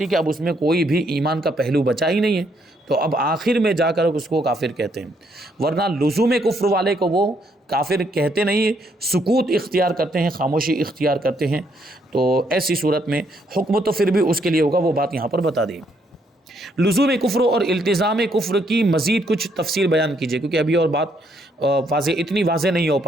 کہ اب اس میں کوئی بھی ایمان کا پہلو بچا ہی نہیں ہے، تو اب آخر میں جا کر اس کو کافر کہتے ہیں، ورنہ لزوم کفر والے کو وہ کافر کہتے نہیں، سکوت اختیار کرتے ہیں، خاموشی اختیار کرتے ہیں۔ تو ایسی صورت میں حکم تو پھر بھی اس کے لیے ہوگا، وہ بات یہاں پر بتا دی۔ لزوم کفر اور التزام کفر کی مزید کچھ تفسیر بیان کیجیے، کیونکہ ابھی اور بات اتنی واضح نہیں ہو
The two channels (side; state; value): both; normal; correlation 0.72